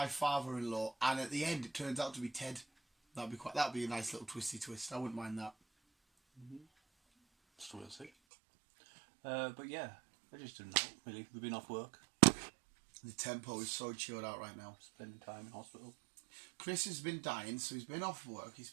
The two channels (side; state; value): left; drops out; at 8.1 s